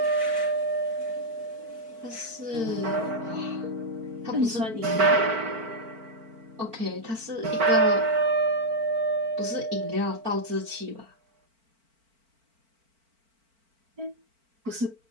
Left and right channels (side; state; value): left; late; 4.5 ms